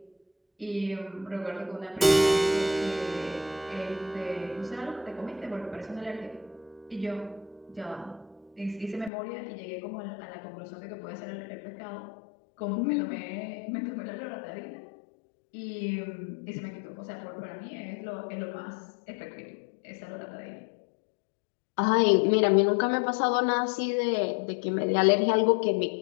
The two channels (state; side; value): drops out; right; at 9.1 s